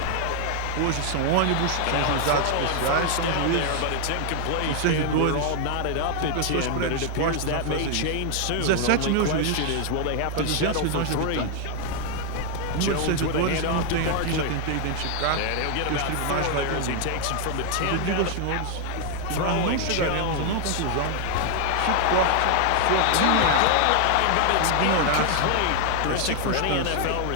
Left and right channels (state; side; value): different; both; correlation 0.00